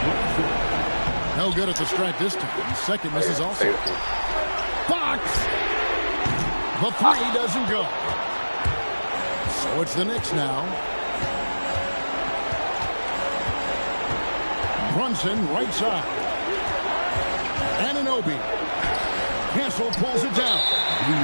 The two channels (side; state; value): both; inverted; correlation -1.00